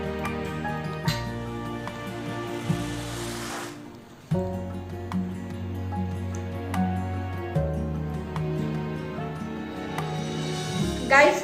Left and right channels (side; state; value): both; identical; correlation 1.00